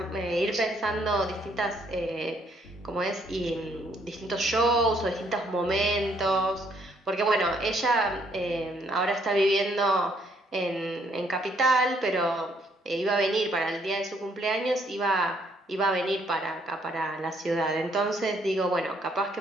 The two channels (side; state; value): both; normal; correlation 0.68